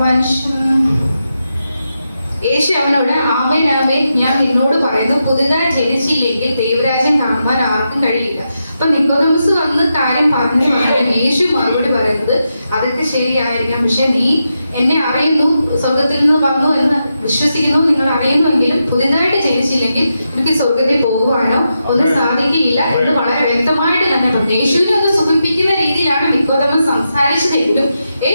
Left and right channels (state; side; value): inverted; both; correlation -0.86